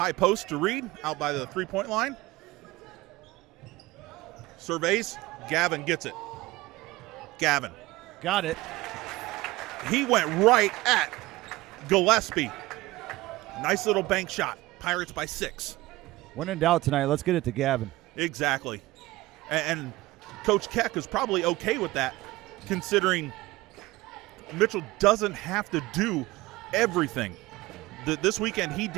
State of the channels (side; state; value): left; quieter; 19.3 dB